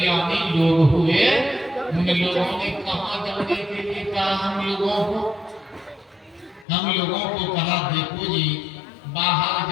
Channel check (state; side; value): drops out; right; at 6.7 s